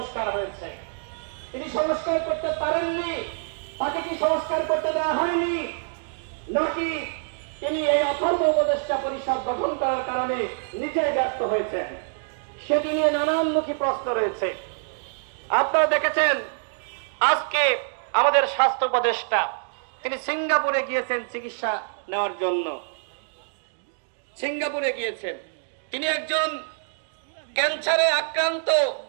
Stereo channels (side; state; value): left; silent; digital silence